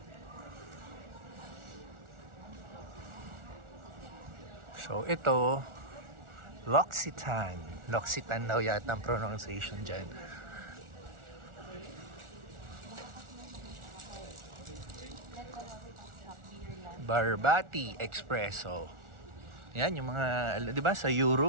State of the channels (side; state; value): left; late; 1.4 ms